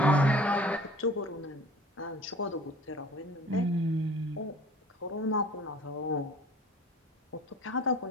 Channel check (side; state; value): both; normal; correlation 0.47